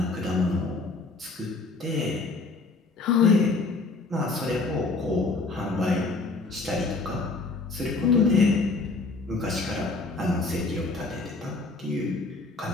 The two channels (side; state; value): right; quieter; 3.6 dB